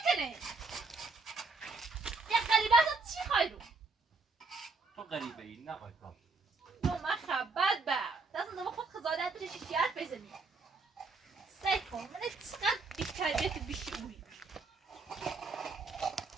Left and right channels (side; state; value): left; quieter; 3.7 dB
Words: کنه یه قریبه ازت چی خواهی رو تو غریبه ای نه پاتون نو من خبت با دست نما خود خزاده ترشی شیعت بزنی سعی کن من چقدر بی تربیت بیشی اوی